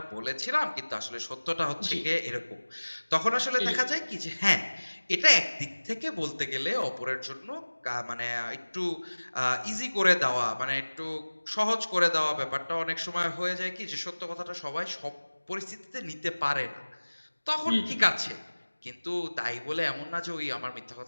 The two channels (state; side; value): inverted; both; correlation -1.00